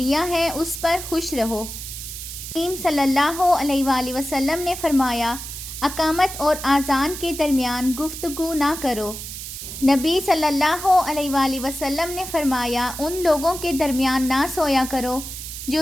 ہے اس پر خوش رہو۔ کریم صلی اللہ علیہ وآلہ وسلم نے فرمایا، اقامت اور اذان کے درمیان گفتگو نہ کرو۔ نبی صلی اللہ علیہ وآلہ وسلم نے فرمایا، ان لوگوں کے درمیان نہ سویا کرو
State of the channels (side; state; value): right; noise; hiss, 9 dB below the sound